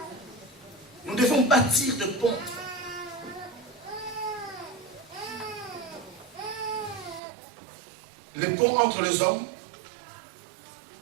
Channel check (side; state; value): left; drops out; at 7.2 s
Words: Nous devons bâtir de ponts. Les ponts entre les hommes,